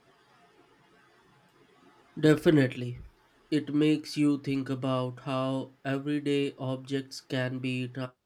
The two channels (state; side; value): identical; both; correlation 1.00